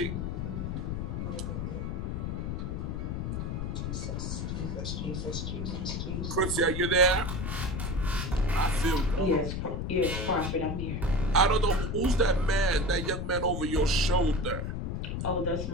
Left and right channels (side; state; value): left; noise; rumble, 2 dB below the sound